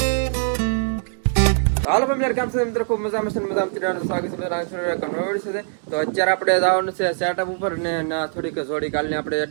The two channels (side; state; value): left; silent; digital silence